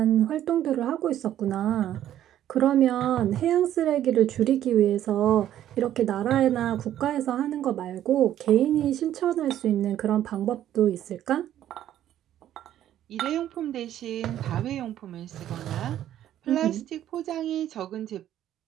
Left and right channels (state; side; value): quieter; left; 11.8 dB